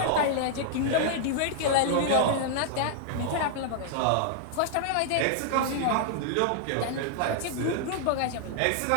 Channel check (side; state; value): both; different; correlation -0.01